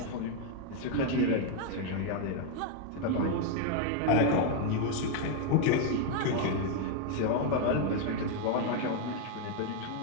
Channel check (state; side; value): different; both; correlation 0.01